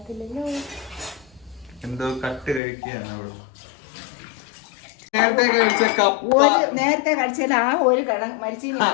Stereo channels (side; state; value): right; drops out; at 2.6 s